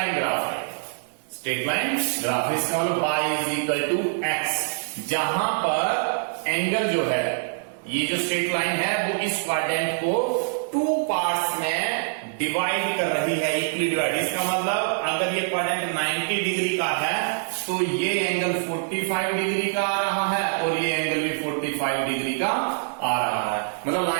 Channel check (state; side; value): silent; left; digital silence